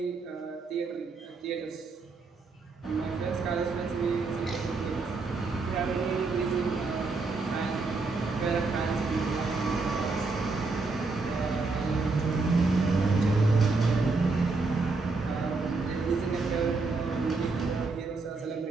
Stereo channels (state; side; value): quieter; left; 3.9 dB